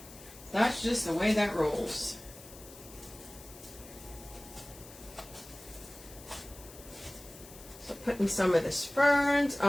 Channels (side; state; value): left; noise; hiss, 18 dB below the sound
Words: That's just the way that rolls. So putting some of this ferns